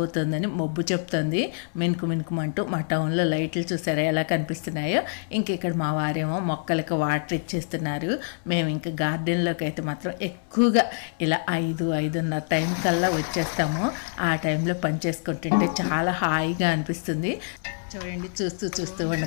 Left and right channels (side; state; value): right; silent; 61 dB below the other